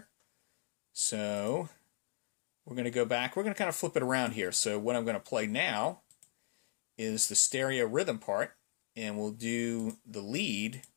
So we're going to go back. We're going to kind of flip it around here. So what I'm going to play now is the stereo rhythm part, and we'll do the lead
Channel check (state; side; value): silent; right; digital silence